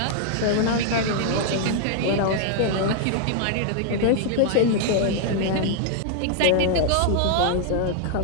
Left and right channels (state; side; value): different; both; correlation 0.00